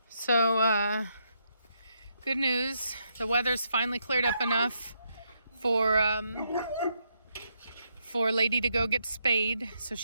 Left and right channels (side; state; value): both; inverted; correlation -0.78